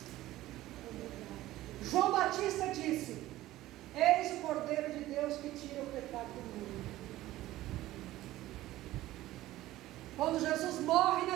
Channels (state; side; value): quieter; left; 15.8 dB